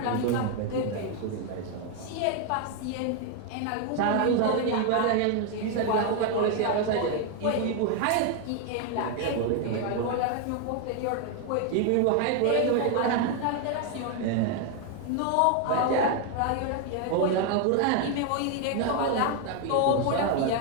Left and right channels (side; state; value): both; different; correlation 0.01